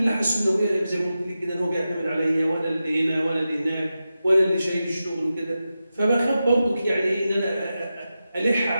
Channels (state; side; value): inverted; both; correlation -0.91